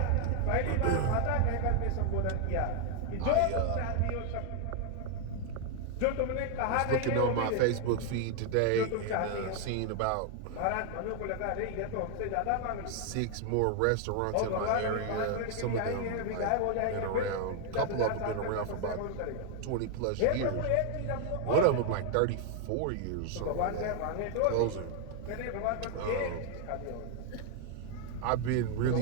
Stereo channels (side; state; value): both; different; correlation 0.00